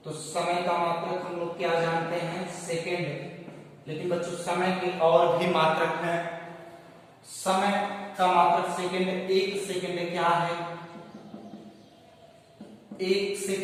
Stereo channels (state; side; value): identical; both; correlation 1.00